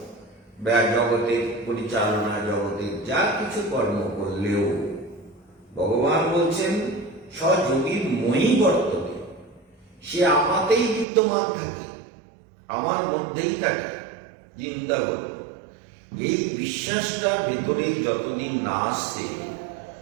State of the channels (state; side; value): drops out; left; at 11.1 s